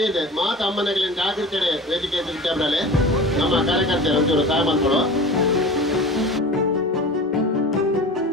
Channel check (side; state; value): both; normal; correlation 0.36